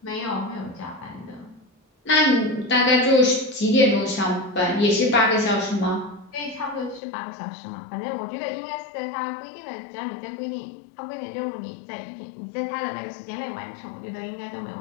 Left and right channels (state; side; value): drops out; right; at 7.0 s